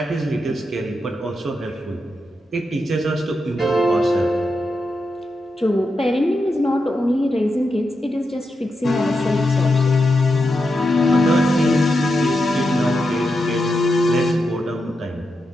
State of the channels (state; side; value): normal; both; correlation 0.86